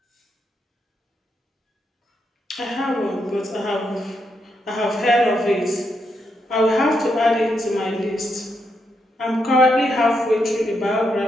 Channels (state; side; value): normal; both; correlation 0.81